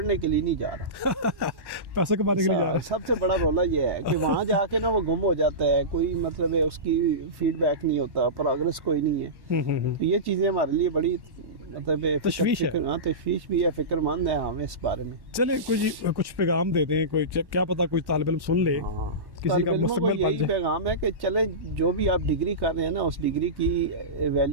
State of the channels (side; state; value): left; late; 1.1 ms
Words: के लिए नहीं जा रहा, पैसे कमाने के लिए जा रहा है। सबसे बड़ा रोला ये है कि वहाँ जाके ना वो गुम हो जाता है, कोई मतलब है उसकी फीडबैक नहीं होता, प्रोग्रेस कोई नहीं है। तो ये चीज़ें हमारे लिए बड़ी मतलब तशवीश है। हाँ, तशवीश भी है, फिक्रमंद है हमें इस बारे में। चले कुछ पैगाम दे दें, कोई क्या पता कोई तालिब इल्म सुन ले। हाँ, किसी का मुस्तकबिल यही पैगाम है कि चले, जो भी आप डिग्री कर रहे हैं ना, उस डिग्री की